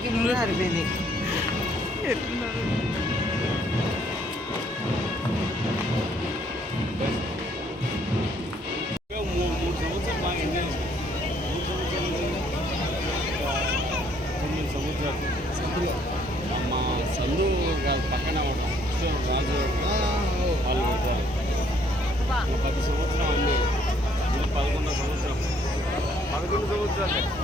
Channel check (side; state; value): both; normal; correlation 0.65